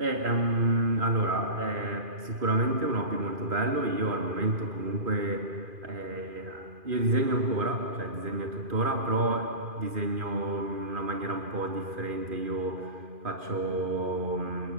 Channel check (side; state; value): left; late; 2.5 ms